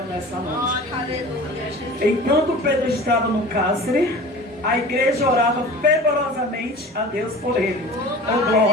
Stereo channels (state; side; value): normal; both; correlation 0.39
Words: nessa noite. Enquanto Pedro estava no cárcere, a igreja orava fervorosamente a Deus por ele. Oh